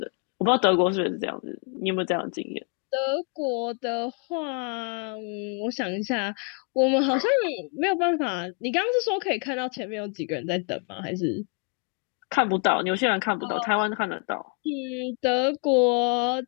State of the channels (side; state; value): right; quieter; 36.3 dB